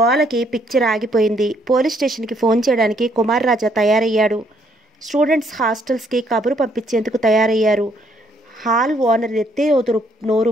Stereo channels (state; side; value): normal; both; correlation 0.68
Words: పిక్చర్ ఆగిపోయింది. పోలీస్ స్టేషన్కి ఫోన్ చేయడానికి కుమార్ రాజా తయారయ్యాడు. స్టూడెంట్స్ హాస్టల్స్కి కబురు పంపించేందుకు తయారయ్యారు. హాల్ ఓనర్ ఎత్తే